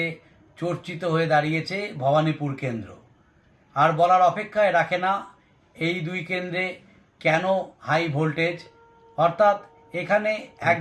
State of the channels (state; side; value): identical; both; correlation 1.00